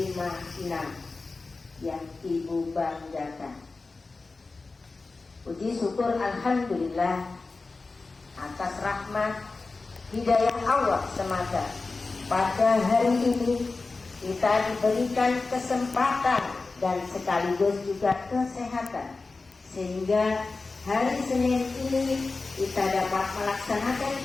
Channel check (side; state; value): right; quieter; 3.8 dB